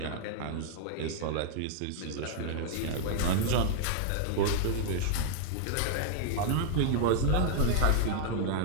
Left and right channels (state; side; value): different; both; correlation -0.01